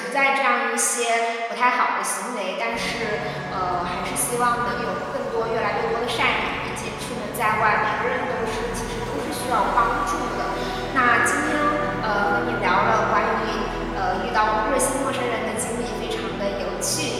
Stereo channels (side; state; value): both; identical; correlation 1.00